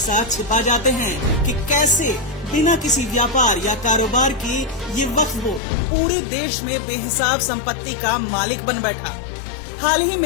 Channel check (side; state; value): right; drops out; at 5.6 s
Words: छिपा जाते हैं कि कैसे बिना किसी व्यापार या कारोबार के ये वक्फ बोर्ड पूरे देश में बेहिसाब संपत्ति का मालिक बन बैठा। हाल ही